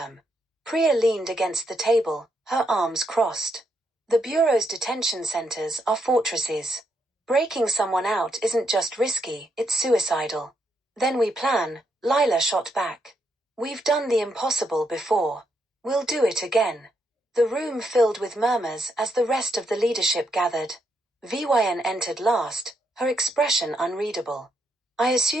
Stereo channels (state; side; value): normal; both; correlation 0.78